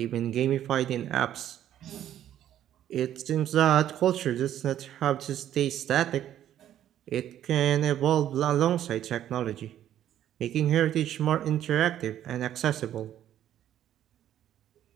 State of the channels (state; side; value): quieter; left; 11.3 dB